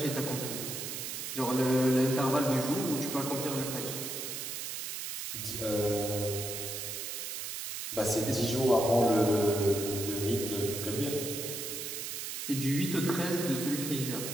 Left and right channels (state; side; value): noise; right; hiss, 5 dB below the sound